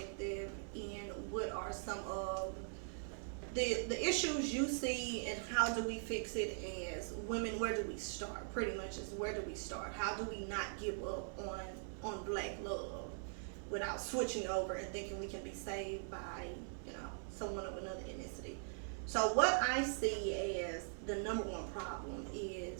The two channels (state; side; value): silent; left; digital silence